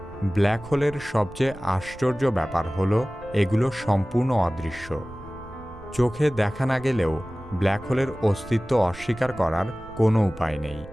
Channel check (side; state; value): right; noise; rumble, 18 dB below the sound